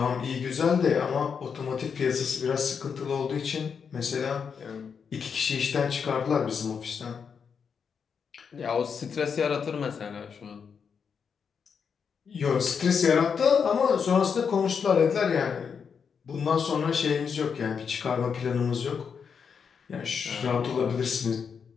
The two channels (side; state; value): right; quieter; 6.4 dB